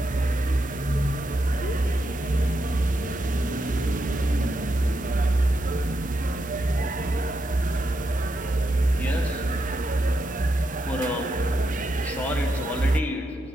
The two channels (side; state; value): both; normal; correlation 0.83